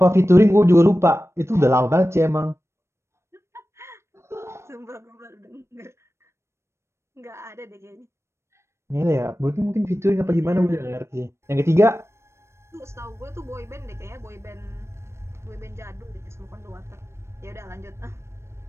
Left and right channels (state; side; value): late; left; 0.13 ms